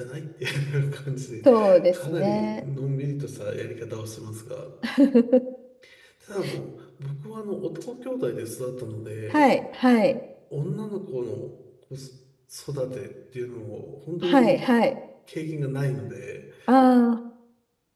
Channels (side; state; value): both; identical; correlation 1.00